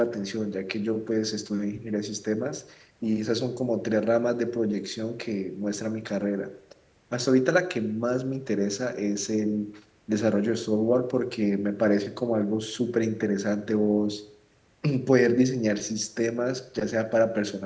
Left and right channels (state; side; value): identical; both; correlation 1.00